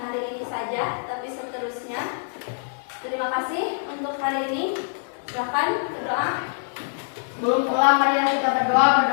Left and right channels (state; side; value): silent; right; digital silence